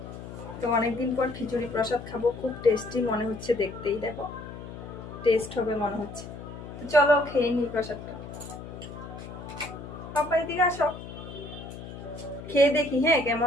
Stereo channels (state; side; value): noise; left; hum, 11 dB below the sound